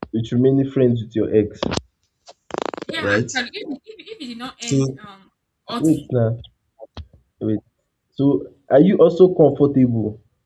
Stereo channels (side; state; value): both; identical; correlation 1.00